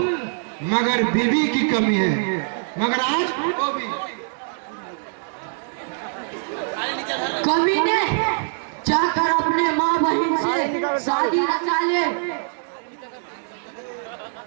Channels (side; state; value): left; silent; digital silence